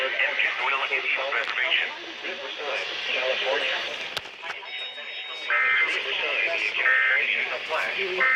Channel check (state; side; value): identical; both; correlation 1.00